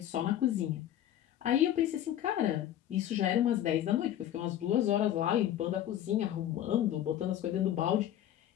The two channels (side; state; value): right; quieter; 11.6 dB